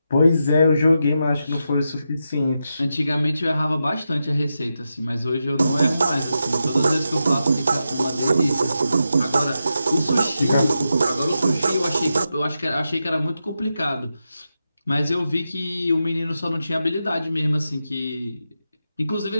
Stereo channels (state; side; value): inverted; both; correlation -0.88